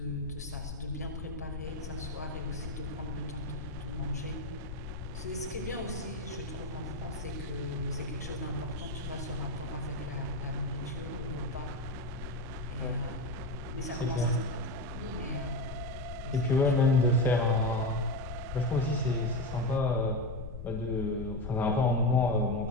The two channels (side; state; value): left; noise; rumble, 8 dB below the sound